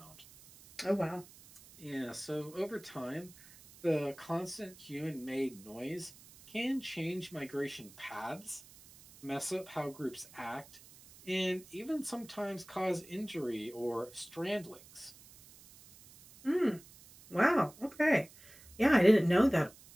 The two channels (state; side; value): noise; right; hiss, 22 dB below the sound